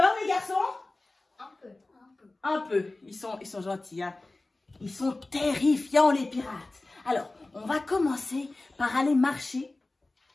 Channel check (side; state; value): right; quieter; 3.0 dB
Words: les garçons? Un peu, un peu. Un peu. Ils sont gentils, hein. Ils sont terrifiants, les pirates. Alors, on va commencer par aller marcher